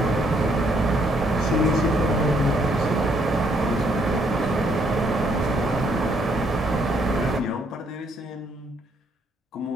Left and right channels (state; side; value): normal; both; correlation 0.70